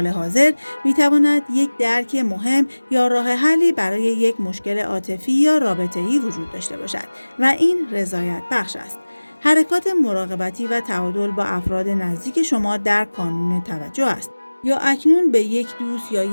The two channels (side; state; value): both; inverted; correlation -1.00